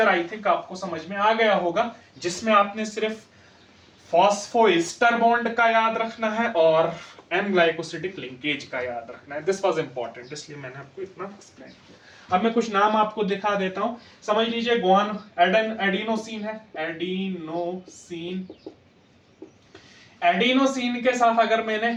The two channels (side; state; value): both; identical; correlation 1.00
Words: आई थिंक आपको समझ में आ गया होगा, जिसमें आपने सिर्फ फॉस्फोएस्टर बॉन्ड का याद रखना है और एन ग्लाइकोसिडिक लिंकेज का याद रखना है। दिस वाज इंपॉर्टेंट, इसलिए मैंने आपको इतना एक्सप्लेन किया। अब मैं कुछ नाम आपको दिखा देता हूं, समझ लीजिए। एडिनोसिन है, एडिनोसिन। एडिनोसिन के साथ अगर